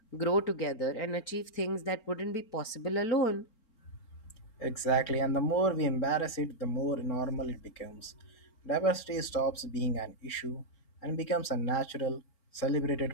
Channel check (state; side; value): late; right; 4.4 ms